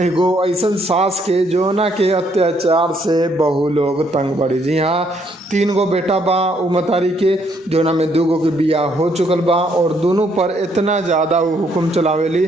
ऐसन सास के जोना के अत्याचार से बहु लोग तंग बड़ी। जी हाँ, 3 गो बेटा बा उमतारी के, जोना में 2 गो के बियाह हो चुकल बा और दोनों पर इतना ज़्यादा वो हुक्म चलावेली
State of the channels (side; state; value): both; normal; correlation 0.70